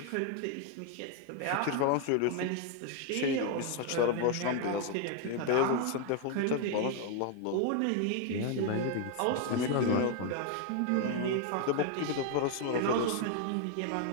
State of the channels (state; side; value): different; both; correlation 0.01